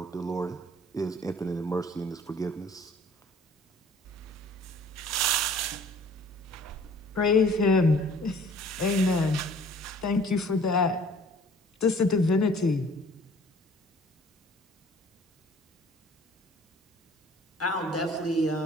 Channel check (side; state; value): both; normal; correlation 0.52